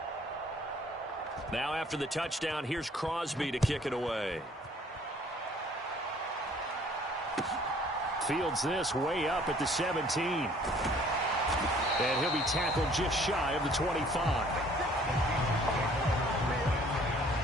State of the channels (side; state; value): both; normal; correlation 0.57